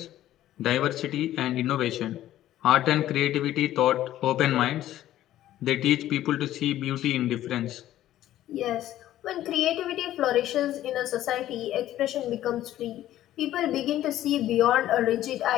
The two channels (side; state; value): right; quieter; 13.3 dB